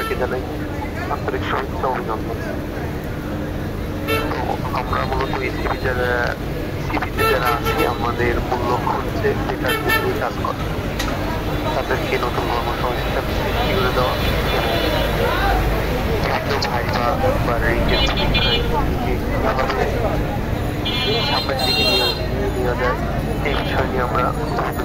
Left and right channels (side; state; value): both; identical; correlation 1.00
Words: জানাই আন্তরিক শুভেচ্ছা অভিনন্দন। আমরা মূলত সিভিতে যারা আছি আমাদের মূল লক্ষ্য হচ্ছে বেকার নিয়ে কাজ করা, তাদেরকে নতুন কর্মসংস্থান সৃষ্টি করে দেওয়া এবং ভাইবা বা রেঞ্জের সামনের দিকে নিয়ে যায় এই বিষয় নিয়ে আমরা বিভিন্ন